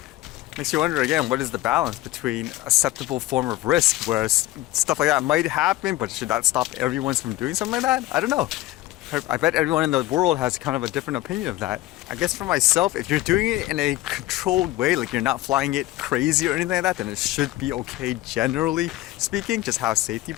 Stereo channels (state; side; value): quieter; right; 16.6 dB